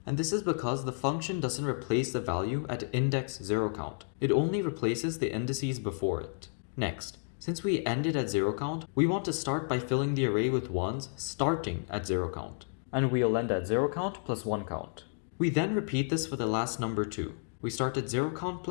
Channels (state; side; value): silent; right; digital silence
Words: And this is because the function doesn't replace the value at index 0count. It only replaces the indices before it. Next, since we ended at 0count, we want to start by filling the array with ones starting at 0count. And we'll end at 0count plus 1count. We then repeat this for the last number 2. We start at 0count